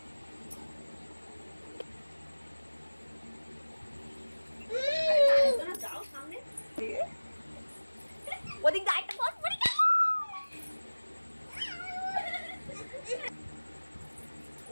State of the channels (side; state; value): both; inverted; correlation -1.00